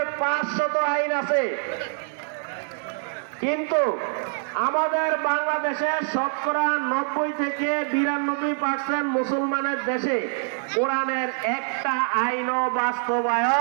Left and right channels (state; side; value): silent; left; 62 dB below the other